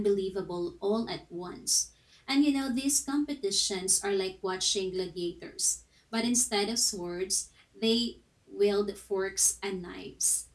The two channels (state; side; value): identical; both; correlation 1.00